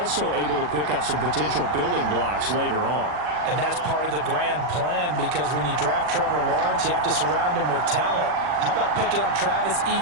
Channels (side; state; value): left; late; 40 ms